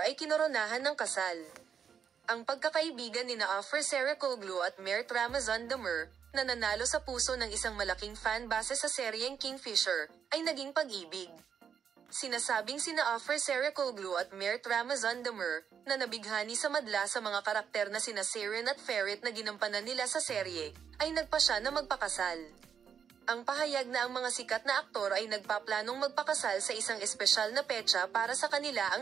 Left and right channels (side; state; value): left; quieter; 7.5 dB